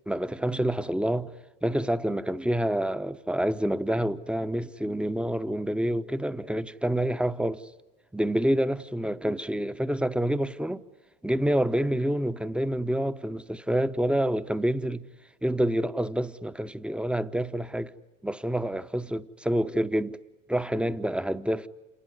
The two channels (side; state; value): both; normal; correlation 0.95